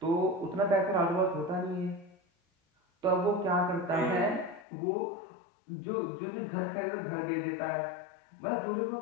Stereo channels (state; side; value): drops out; right; at 4.7 s